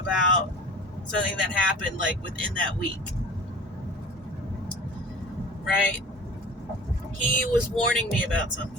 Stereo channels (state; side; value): normal; both; correlation 0.42